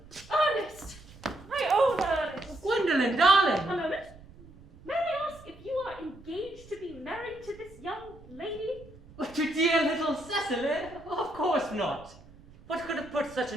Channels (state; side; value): noise; right; rumble, 21 dB below the sound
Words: Ernest! My own Ernest! Gwendolyn, darling! A moment. May I ask if you are engaged to be married to this young lady? To dear little Cecily? Of course not. What could have put such